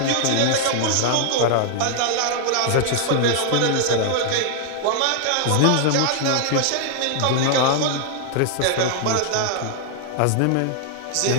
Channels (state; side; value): different; both; correlation 0.00